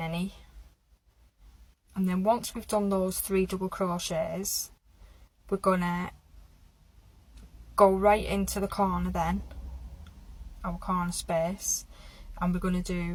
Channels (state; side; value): identical; both; correlation 1.00